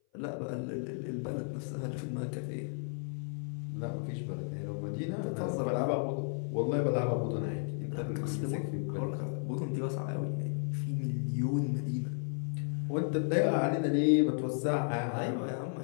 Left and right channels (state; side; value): silent; right; 55 dB below the other